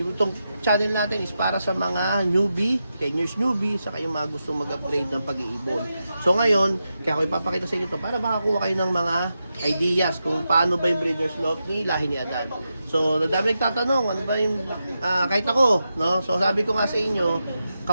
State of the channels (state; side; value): inverted; both; correlation -0.88